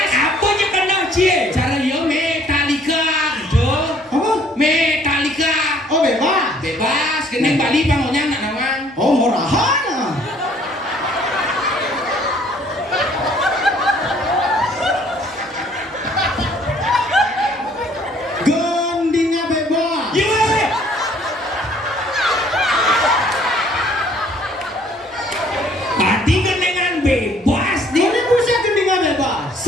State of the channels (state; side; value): normal; both; correlation 0.60